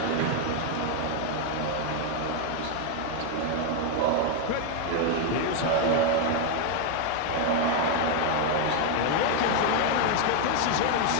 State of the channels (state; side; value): different; both; correlation 0.00